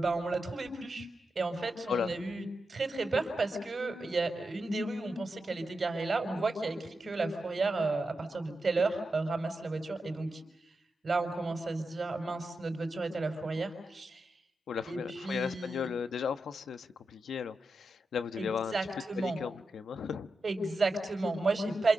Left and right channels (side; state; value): both; normal; correlation 0.88